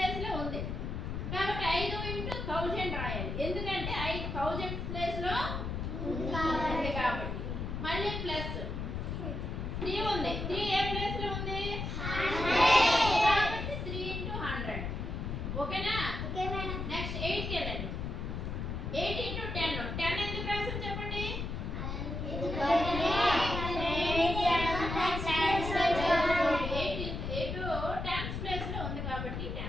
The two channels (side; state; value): left; noise; rumble, 4 dB below the sound